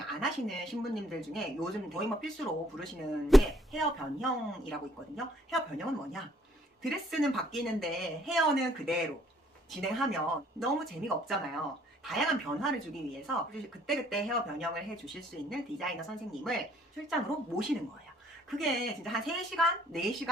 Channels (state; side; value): normal; both; correlation 0.63